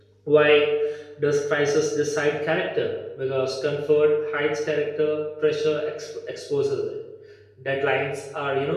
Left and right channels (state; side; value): identical; both; correlation 1.00